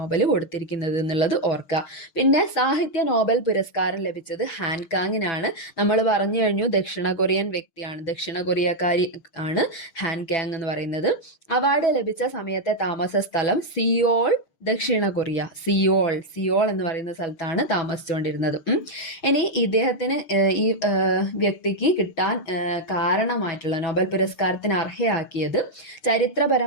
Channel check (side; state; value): right; late; 6.6 ms